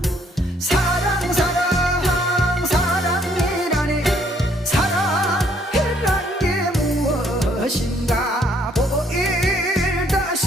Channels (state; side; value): normal; both; correlation 0.66